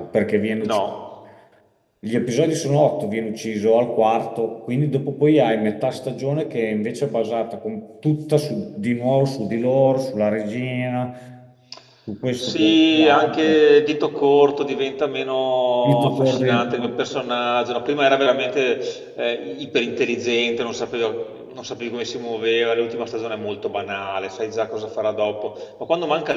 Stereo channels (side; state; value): both; identical; correlation 1.00